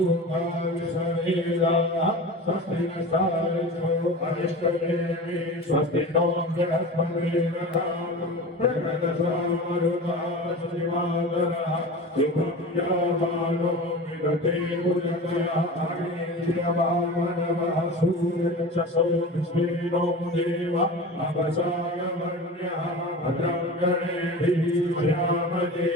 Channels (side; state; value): both; normal; correlation 0.32